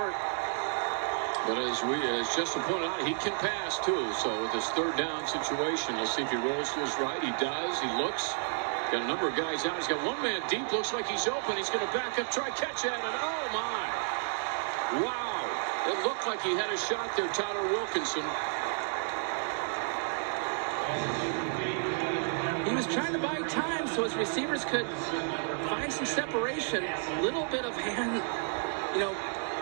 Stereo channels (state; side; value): silent; left; 57 dB below the other